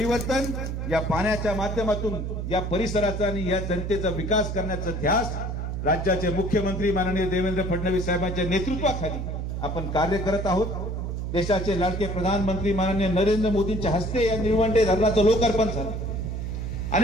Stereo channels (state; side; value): noise; right; hum, 3 dB below the sound